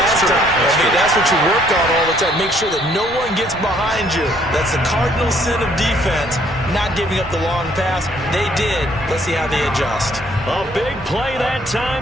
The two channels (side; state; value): both; normal; correlation 0.64